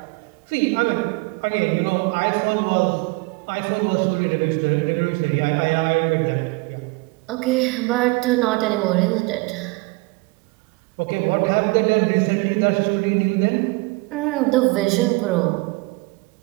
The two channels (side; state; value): left; quieter; 25.7 dB